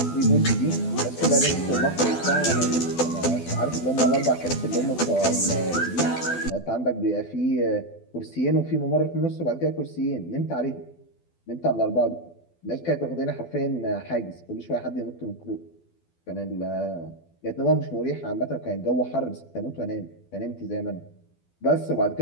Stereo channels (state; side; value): late; right; 12 ms